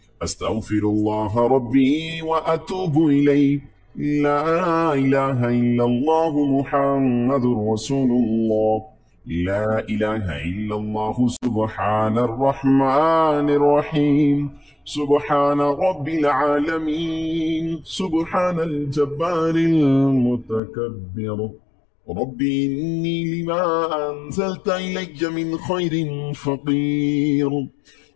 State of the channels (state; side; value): drops out; right; at 20.6 s